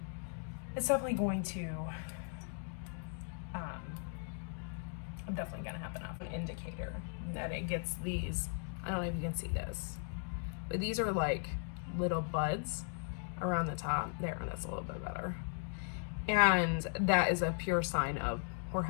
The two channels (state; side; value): silent; right; 53 dB below the other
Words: it's definitely going to, I'm definitely gonna have enough. An indicator that it gets these, I don't know if you can see this, but these are like little buds around the top. There, that's a little bit better. And that is a pure sign of